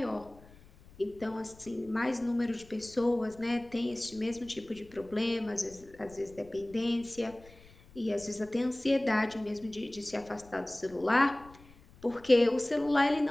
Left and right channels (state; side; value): noise; left; rumble, 23 dB below the sound